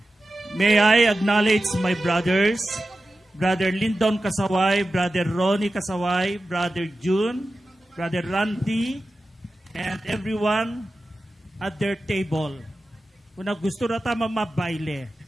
May I acknowledge my brothers, Brother Lyndon Kasaway, Brother Ronnie Kasaway, Brother June, Brother Randy, and everyone at their table. Kung gusto na tama mabaile,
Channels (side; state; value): both; normal; correlation 0.93